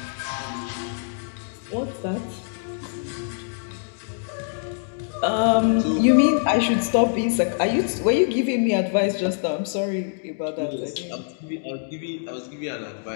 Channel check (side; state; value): right; silent; digital silence